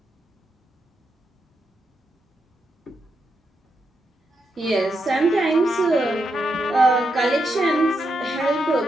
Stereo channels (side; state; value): both; normal; correlation 0.83